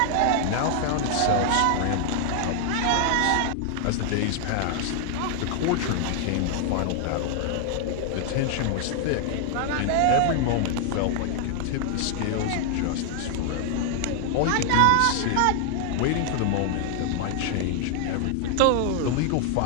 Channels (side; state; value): both; different; correlation 0.00